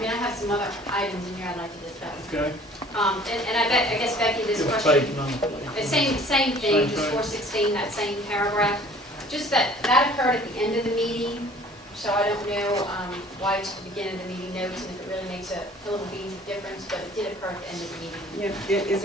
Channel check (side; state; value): both; normal; correlation 0.51